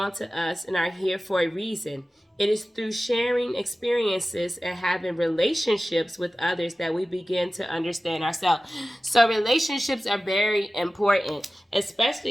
to us and are here for a reason. It is through sharing experiences and having relationships with others that we begin to understand ourselves. So relationships are very important,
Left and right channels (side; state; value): both; normal; correlation 0.96